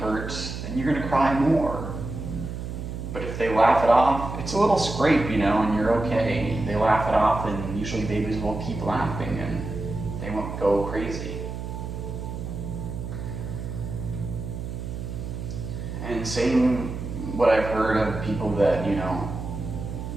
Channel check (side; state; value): right; noise; hum, 6 dB below the sound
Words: then you're going to cry more. But if they laugh it off, it's a little scrape, and you're okay. They laugh it off, and usually babies will keep laughing and they won't go crazy. And same what I've heard of people that,